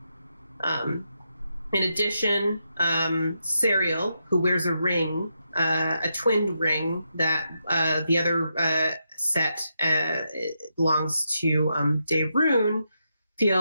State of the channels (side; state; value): both; inverted; correlation -0.83